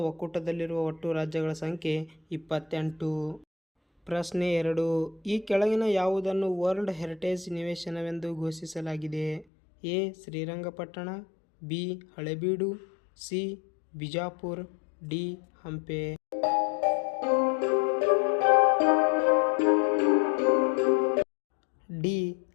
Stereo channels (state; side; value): drops out; right; at 9.5 s